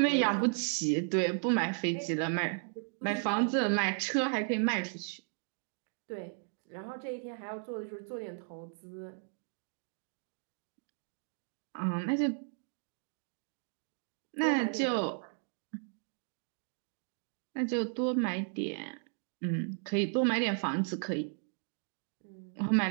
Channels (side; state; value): left; silent; 54 dB below the other